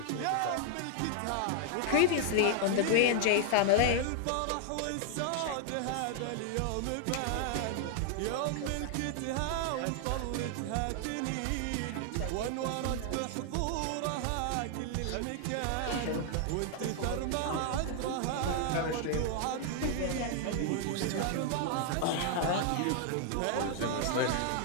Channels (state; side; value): different; both; correlation 0.00